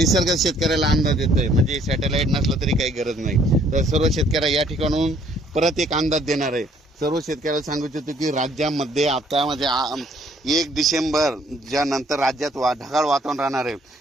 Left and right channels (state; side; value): normal; both; correlation 0.62